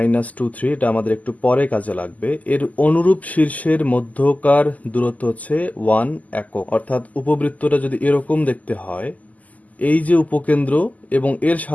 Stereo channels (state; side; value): late; right; 0.076 ms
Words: 3, এটা আমাদের একটু পরে কাজে লাগবে। এর অনুরূপ শীর্ষের মধ্যকার দূরত্ব হচ্ছে 1 একক, অর্থাৎ উপবৃত্তটা যদি এরকম দেখতে হয়, এই যে উপকেন্দ্র এবং এর